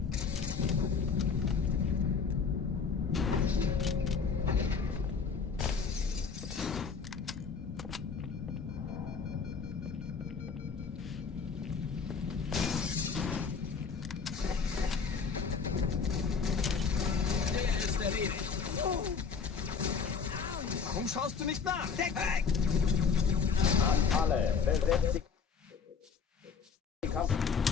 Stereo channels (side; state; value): right; quieter; 5.8 dB